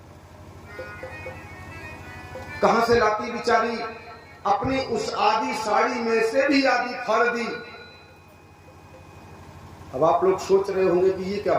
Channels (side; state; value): both; identical; correlation 1.00